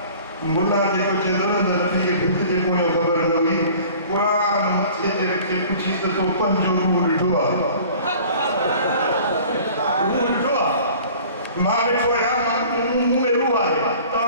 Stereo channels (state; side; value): inverted; both; correlation -0.47